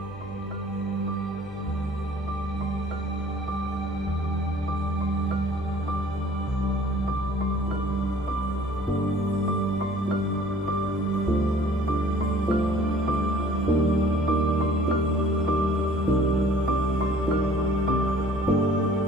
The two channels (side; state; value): both; normal; correlation 0.52